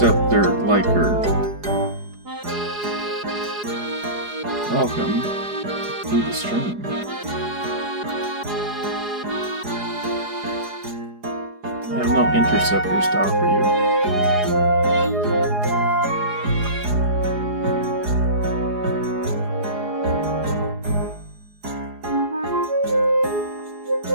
Liker. Welcome to the stream. I have no interceptors to offer you.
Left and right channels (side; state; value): left; late; 4.8 ms